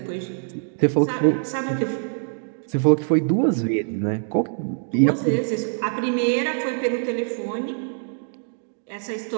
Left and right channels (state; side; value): silent; left; digital silence